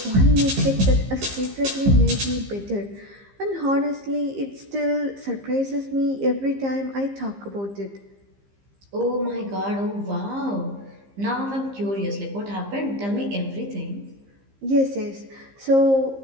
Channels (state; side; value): late; left; 15 ms